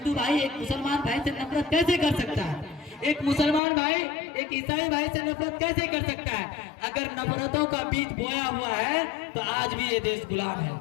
भाई एक मुसलमान भाई से नफरत कैसे कर सकता है? एक मुसलमान भाई एक ईसाई भाई से नफरत कैसे कर सकता है? अगर नफरतों का बीज बोया हुआ है तो आज भी ये देश गुलाम है।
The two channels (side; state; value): right; drops out; at 3.6 s